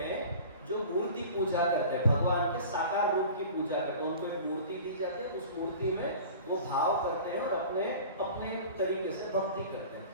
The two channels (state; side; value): inverted; both; correlation -0.40